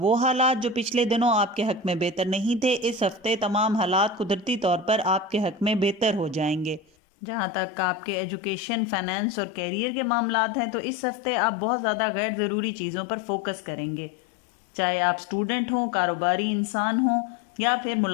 حالات جو پچھلے دنوں آپ کے حق میں بہتر نہیں تھے، اس ہفتے تمام حالات قدرتی طور پر آپ کے حق میں بہتر ہو جائیں گے۔ جہاں تک آپ کے ایجوکیشن، فائنانس اور کیریئر کے معاملات ہیں تو اس ہفتے آپ بہت زیادہ غیر ضروری چیزوں پر فوکس کریں گے، چاہے آپ اسٹوڈنٹ ہوں، کاروباری انسان ہوں یا پھر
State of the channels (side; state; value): right; drops out; at 6.8 s